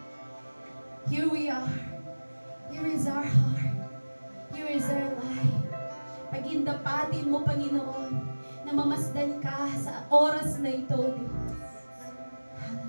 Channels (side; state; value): both; inverted; correlation -1.00